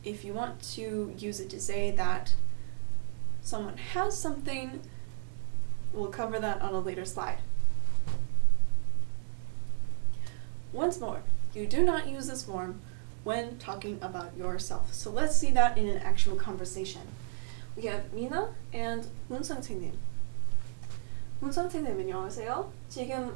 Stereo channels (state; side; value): silent; left; 57 dB below the other